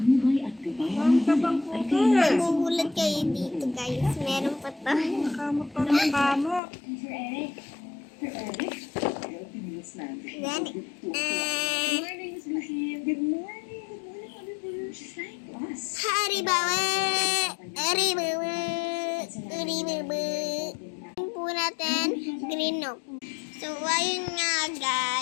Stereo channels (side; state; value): right; drops out; at 6.6 s